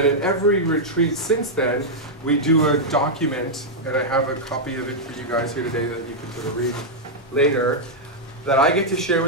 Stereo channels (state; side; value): normal; both; correlation -0.05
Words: at every retreat since then, we do a document, and I have a copy of it for you guys here today that you can sort of read later, that I get to share